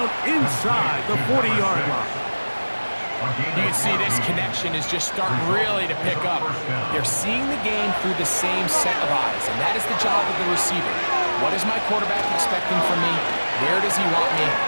inside the 40-yard line. You can see this connection is just starting really to pick up. They're seeing the game through the same set of eyes, and that is the job of the receiver. What is my quarterback expecting from me? Where does he want me?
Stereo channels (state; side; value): inverted; both; correlation -1.00